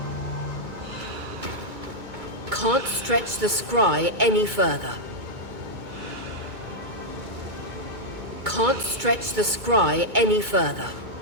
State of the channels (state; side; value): late; left; 2.2 ms